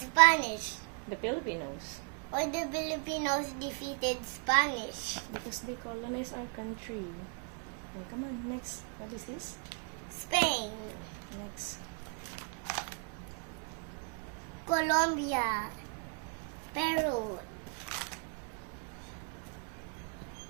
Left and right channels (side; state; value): left; quieter; 37.1 dB